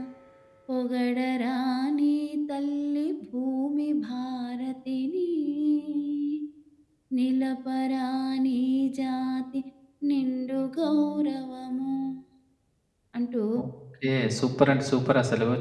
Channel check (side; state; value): both; identical; correlation 1.00